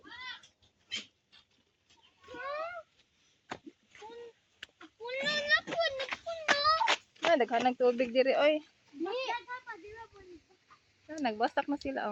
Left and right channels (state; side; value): identical; both; correlation 1.00